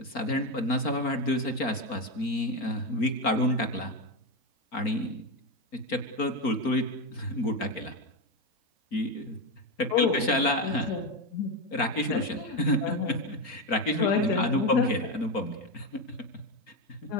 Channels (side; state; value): right; late; 4.4 ms